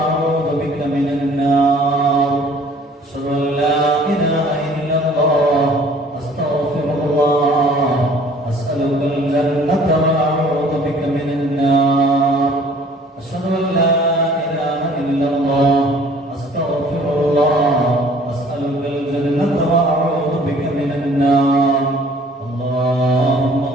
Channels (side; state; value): both; normal; correlation 0.53